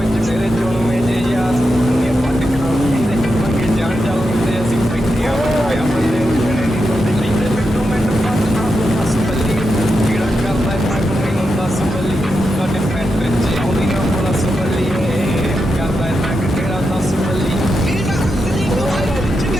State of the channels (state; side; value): normal; both; correlation 0.87